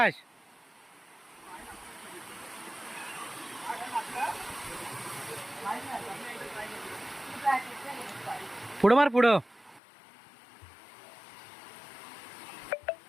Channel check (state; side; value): drops out; right; at 9.8 s